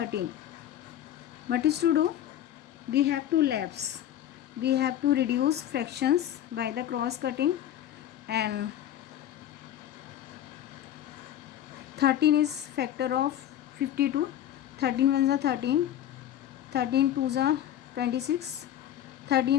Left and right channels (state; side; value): quieter; right; 11.4 dB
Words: What is to do? We have to lapse. We have to reduce fractions by the cross cutting, and 13 is factor of 52. 13 ones are 13. 13 twos are 26.